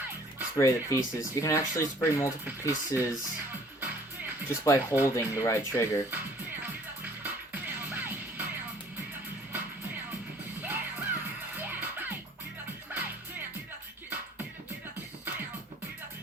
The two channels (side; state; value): both; normal; correlation 0.56